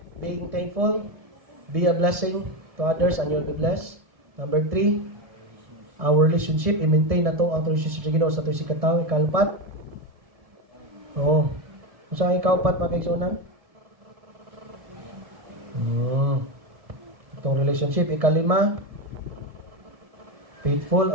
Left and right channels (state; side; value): late; left; 1.7 ms